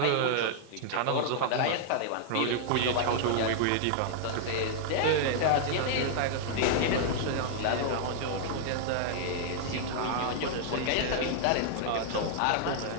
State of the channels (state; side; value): different; both; correlation -0.01